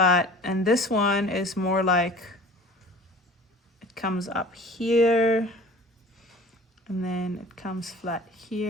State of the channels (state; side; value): normal; both; correlation 0.44